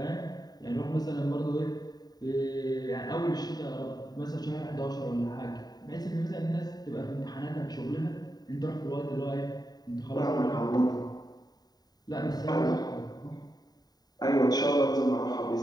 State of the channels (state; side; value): late; right; 0.19 ms